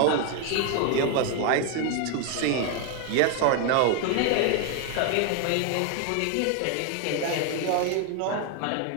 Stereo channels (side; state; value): both; different; correlation 0.01